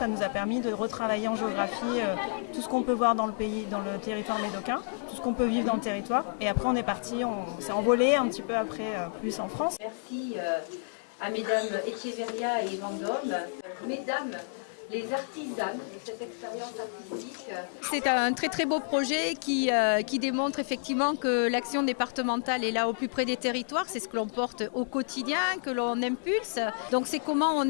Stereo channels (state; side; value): silent; right; digital silence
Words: nous a permis de retravailler en géographie tout ce qu'on peut voir dans le pays, dans le territoire médocain, tout ce qu'on peut vivre dans le territoire. Et après on est parti, on s'est envolé un petit peu après plus en France. Merci à mesdames Echeverria et Vendôme, mesdames les artisanes de cette expérience artistique. C'est un très très beau projet qui démontre effectivement que l'action départementale est là au plus près des territoires. C'est ce que l'on porte au quotidien, que l'on impulse. Donc c'est comment on